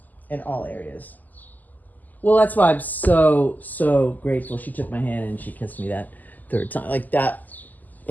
in all areas. Well, that's why I'm so grateful. She took my hand and she kissed me that third time, like that.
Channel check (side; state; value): right; late; 0.083 ms